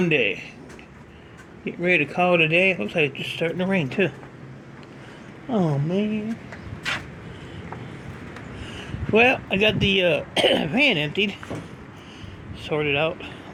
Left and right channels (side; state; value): both; identical; correlation 1.00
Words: Getting ready to call it a day. Looks like it's just starting to rain too. Oh man. Well, I got the van emptied, sorted out,